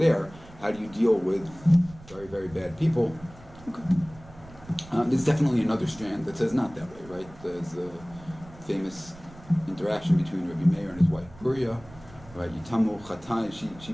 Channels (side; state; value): right; noise; rumble, 20 dB below the sound